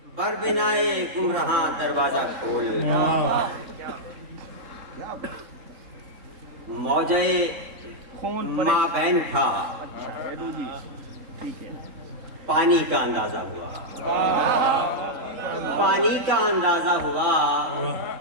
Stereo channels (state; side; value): late; left; 3.6 ms